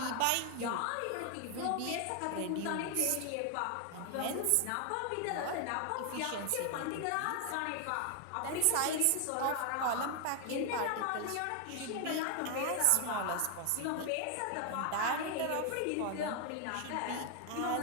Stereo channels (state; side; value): different; both; correlation 0.00